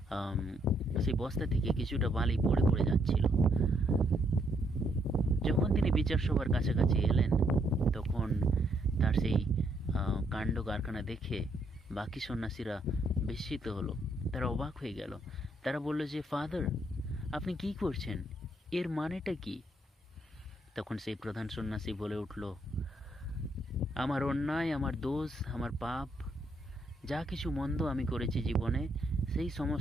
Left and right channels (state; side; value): normal; both; correlation 0.73